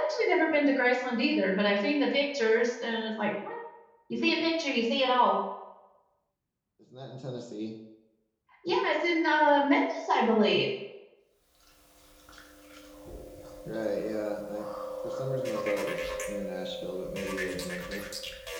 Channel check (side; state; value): both; identical; correlation 1.00